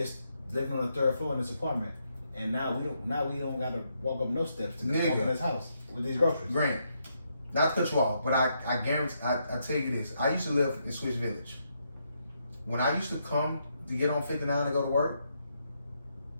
living on the third floor in this apartment, and now we don't got to walk up no steps to walk in this house with these groceries. Grant, not to cut you off, but I guarantee, I tell you this. I used to live in Swiss Village. When I used to come to get on 59 to go to work,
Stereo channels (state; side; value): inverted; both; correlation -0.78